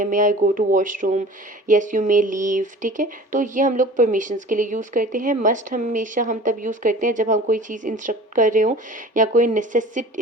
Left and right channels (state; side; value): normal; both; correlation 0.42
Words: may I go to washroom, yes you may leave, ठीक है। तो ये हम लोग परमिशंस के लिए यूज़ करते हैं। मस्ट हमेशा हम तब यूज़ करते हैं जब हम कोई चीज़ इंस्ट्रक्ट कर रहे हो या कोई